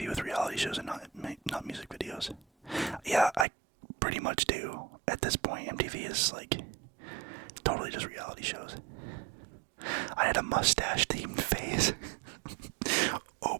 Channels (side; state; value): left; drops out; at 3.5 s